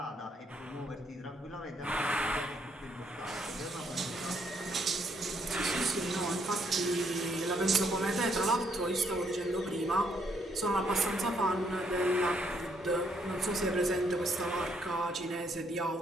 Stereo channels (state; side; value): normal; both; correlation 0.71